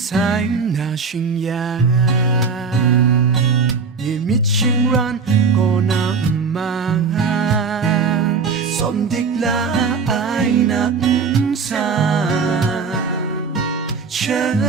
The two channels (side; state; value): left; quieter; 5.2 dB